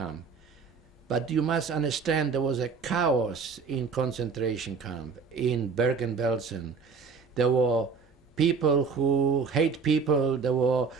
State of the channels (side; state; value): left; quieter; 5.2 dB